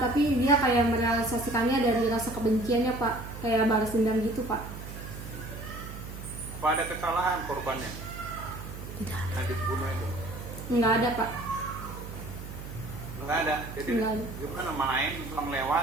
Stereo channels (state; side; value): noise; right; hum, 10 dB below the sound